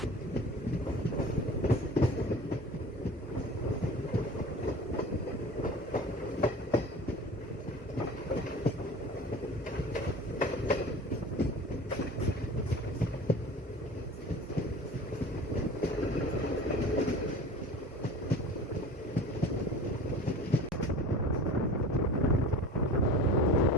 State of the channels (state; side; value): normal; both; correlation 0.39